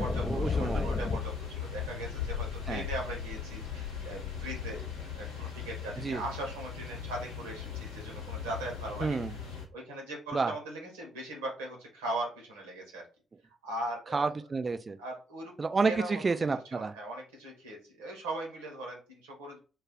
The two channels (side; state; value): both; normal; correlation 0.68